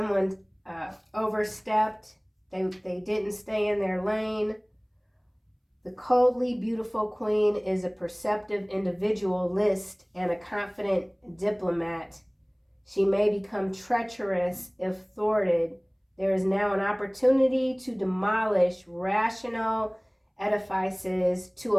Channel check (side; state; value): both; identical; correlation 1.00